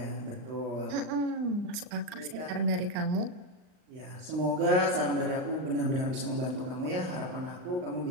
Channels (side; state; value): left; late; 39 ms